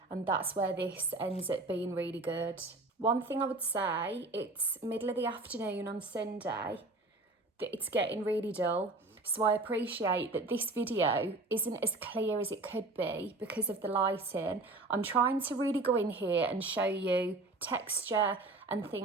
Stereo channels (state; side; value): quieter; left; 3.2 dB